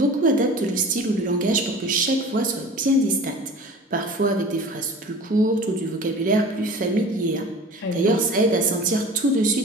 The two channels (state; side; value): normal; both; correlation 0.41